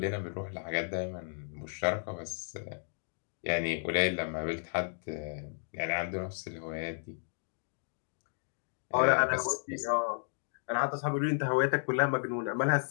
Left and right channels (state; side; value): silent; right; digital silence